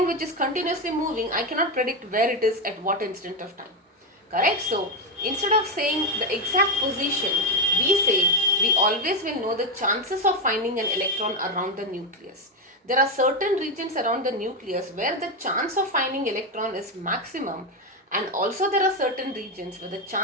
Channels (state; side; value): normal; both; correlation 0.10